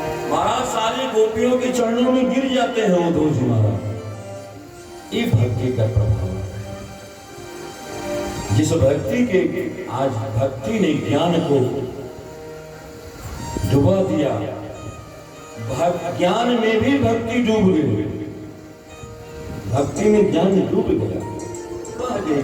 महाराज सारी गोपियों के चरणों में गिर जाते हैं उद्धव जी महाराज। ये भक्ति का प्रभाव है। जिस भक्ति के आज भक्ति ने ज्ञान को डुबा दिया, ज्ञान में भी भक्ति डूब गई, भक्ति में ज्ञान डूब गया, बह गए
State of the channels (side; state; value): both; identical; correlation 1.00